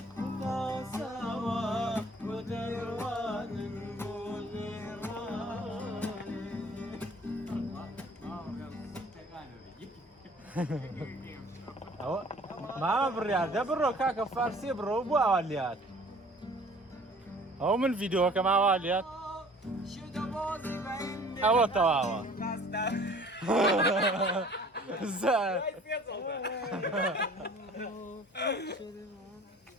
تاساوە بۆ دەیڕوانن بۆ ئەوە مامە بڕیار دە بڕۆ کاکە فارسیە بڕۆ بۆ ئاوا لات ئەو من ڤیدۆکە ماوا لات ئەوە تەواوە زار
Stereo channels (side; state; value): both; normal; correlation 0.51